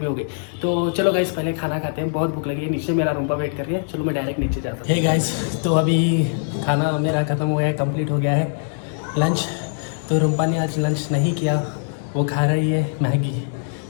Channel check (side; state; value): right; silent; digital silence